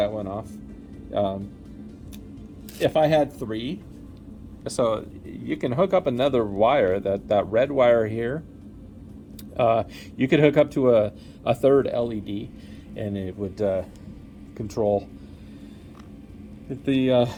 one off. If I had 3, so you can hook up another wire, that red wire here. You could hook up to a third LED, and it would control the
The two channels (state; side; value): identical; both; correlation 1.00